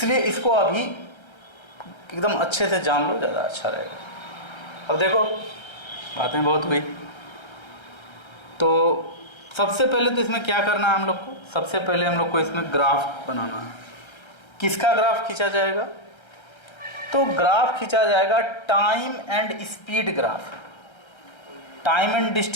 इसको अभी एकदम अच्छे से जान लो, ज़्यादा अच्छा रहेगा। अब देखो बातें बहुत हुई, तो सबसे पहले तो इसमें क्या करना है हम लोग को, सबसे पहले हम लोग को इसमें ग्राफ बनाना है। किसका ग्राफ खींचा जाएगा? तो ग्राफ खींचा जाएगा time and speed graph. Time and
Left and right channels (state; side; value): late; right; 1.3 ms